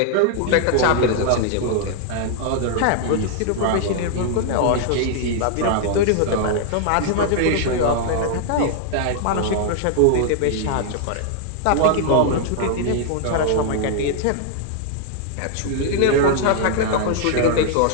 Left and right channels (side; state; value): both; different; correlation 0.00